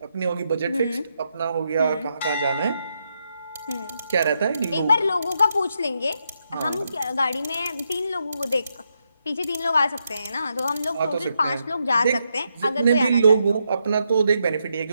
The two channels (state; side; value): inverted; both; correlation -0.81